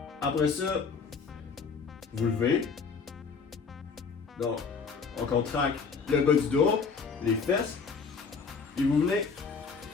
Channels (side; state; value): right; quieter; 5.3 dB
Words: Après ça, vous levez, Donc, on contracte le bas du dos, les fesses, et vous venez